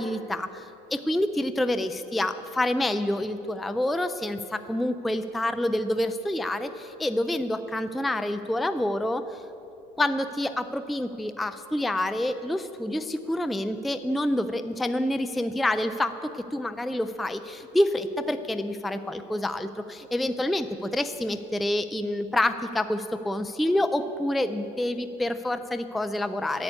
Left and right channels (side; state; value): both; normal; correlation 0.91